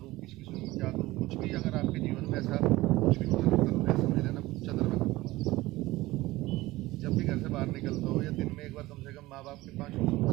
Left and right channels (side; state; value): left; quieter; 18.6 dB